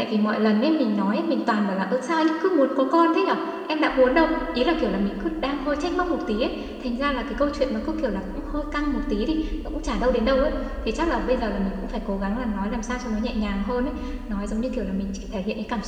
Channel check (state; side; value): identical; both; correlation 1.00